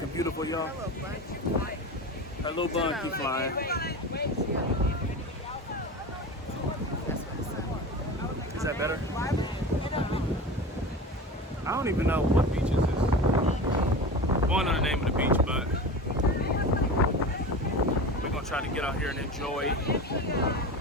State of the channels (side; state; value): both; normal; correlation 0.30